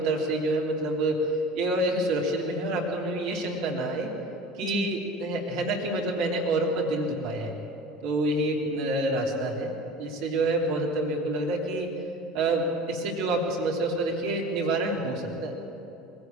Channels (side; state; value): both; normal; correlation 0.38